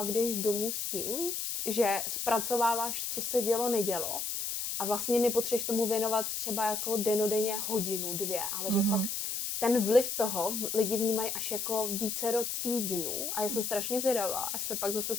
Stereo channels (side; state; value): left; noise; hiss, 3 dB below the sound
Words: jdeš domů s tím, že zpracováváš, co se dělo, nedělo a vlastně nepotřebuješ tomu věnovat třeba jako denodenně hodinu, 2, ale že fakt ten vliv toho lidi vnímají až jako vícero týdnů a já jsem strašně zvědavá, až se pak zase